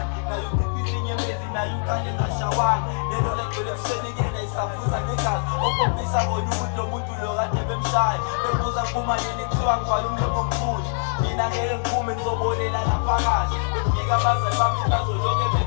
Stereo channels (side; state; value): right; silent; 63 dB below the other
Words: nayo ukubili nyembezi nayo ukale ngashawani lelo legcwele ebusenekena isavuza negazi okhombisa bona ukuthi lo muntu lo kade bemshaya bebuza kumalini kuthiwa ngibhala umlomo omkhulu mina ngeke ngiphume ngizobolela laphakathi befika abazali bami bazolonke